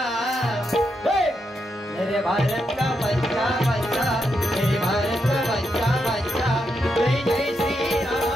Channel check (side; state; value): both; normal; correlation 0.83